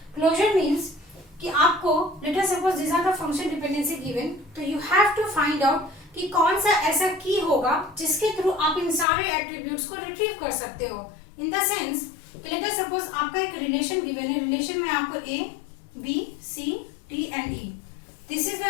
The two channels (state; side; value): drops out; right; at 9.1 s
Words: Closure means कि आपको let us suppose this are the function dependency given, तो you have to find out कि कौन सा ऐसा की होगा जिसके थ्रू आप इन सारे एट्रीब्यूट्स को रिट्रीव कर सकते हो. In the sense let us suppose आपका एक रिलेशन गिवन है. रिलेशन में आपको A B C D and E, this is